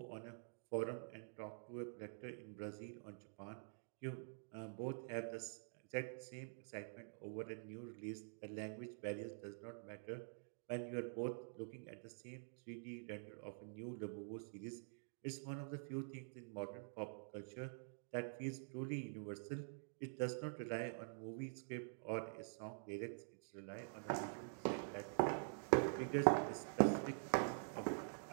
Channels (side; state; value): left; silent; digital silence